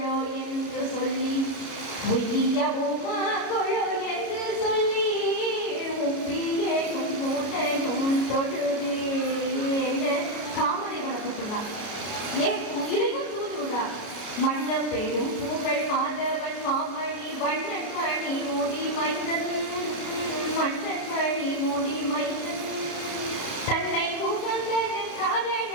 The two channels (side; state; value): right; late; 33 ms